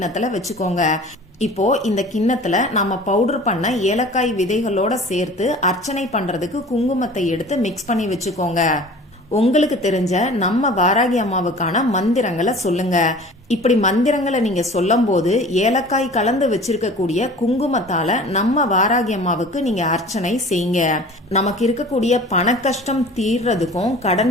வச்சுக்கோங்க. இப்போ இந்த கிண்ணத்துல நம்ம பவுடர் பண்ண ஏலக்காய் விதைகளோட சேர்த்து அர்ச்சனை பண்றதுக்கு குங்குமத்தை எடுத்து மிக்ஸ் பண்ணி வச்சுக்கோங்க. உங்களுக்கு தெரிஞ்ச நம்ம வாராகி அம்மாவுக்கான மந்திரங்களை சொல்லுங்க. இப்படி மந்திரங்களை நீங்க சொல்லும் போது ஏலக்காய் கலந்து வச்சிருக்கக்கூடிய குங்குமத்தால நம்ம வாராகி அம்மாவுக்கு நீங்க அர்ச்சனை செய்யுங்க. நமக்கு இருக்கக்கூடிய பண கஷ்டம் தீர்றதுக்கும் கடன்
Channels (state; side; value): normal; both; correlation 0.43